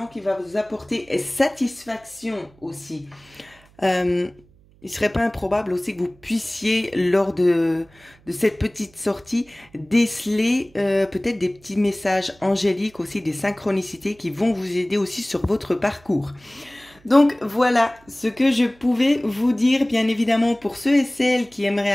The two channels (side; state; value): right; noise; hum, 29 dB below the sound